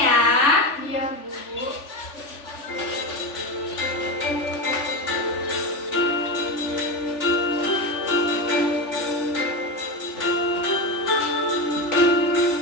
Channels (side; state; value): right; late; 3.4 ms